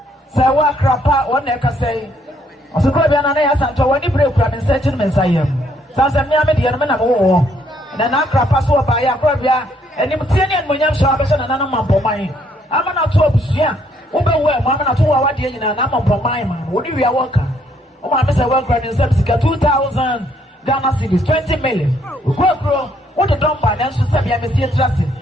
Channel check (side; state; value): both; normal; correlation 0.69